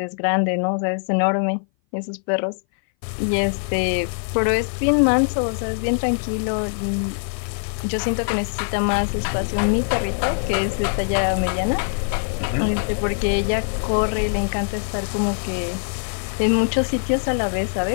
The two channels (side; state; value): right; silent; 58 dB below the other